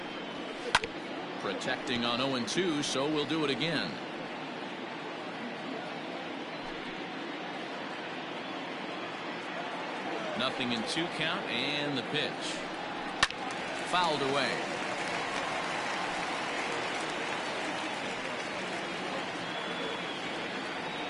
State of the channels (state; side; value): identical; both; correlation 1.00